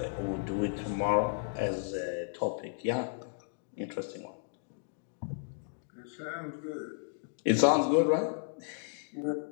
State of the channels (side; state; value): right; silent; digital silence